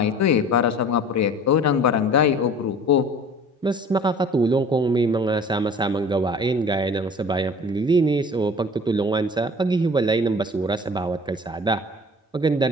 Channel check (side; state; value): both; normal; correlation 0.45